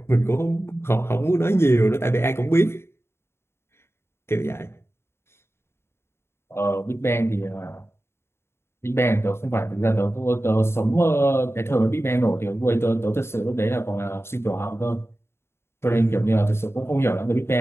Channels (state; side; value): late; right; 0.12 ms